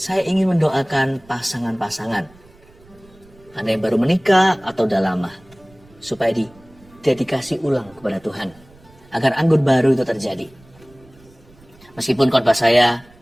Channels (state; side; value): noise; right; rumble, 27 dB below the sound